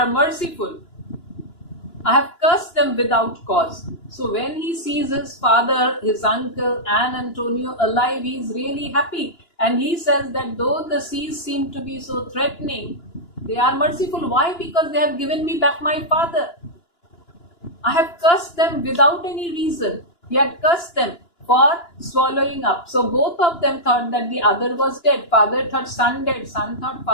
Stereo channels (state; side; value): late; right; 2.9 ms